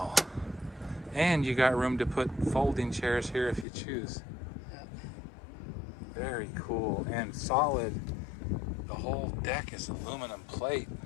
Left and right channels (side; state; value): right; drops out; at 3.7 s